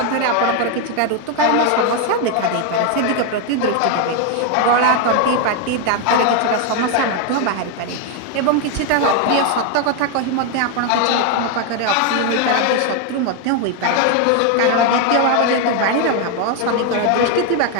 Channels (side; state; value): both; different; correlation 0.01